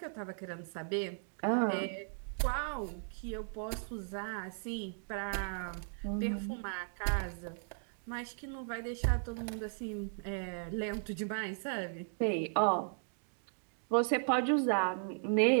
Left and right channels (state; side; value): silent; left; digital silence